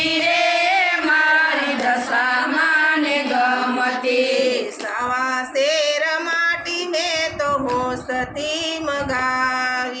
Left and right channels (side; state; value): both; identical; correlation 1.00